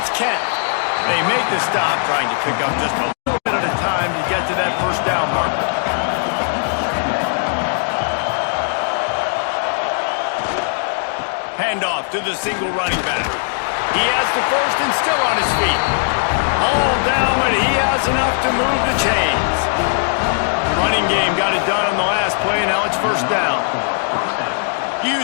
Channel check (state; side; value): silent; right; digital silence